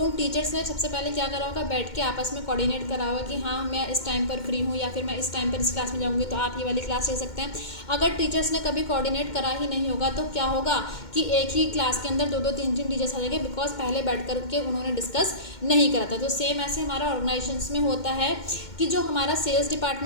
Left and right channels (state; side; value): late; right; 2.1 ms